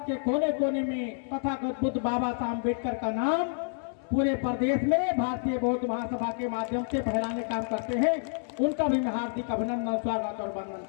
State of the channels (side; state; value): right; silent; 59 dB below the other